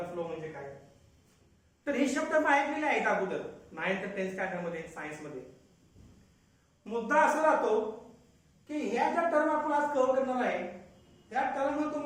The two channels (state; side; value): identical; both; correlation 1.00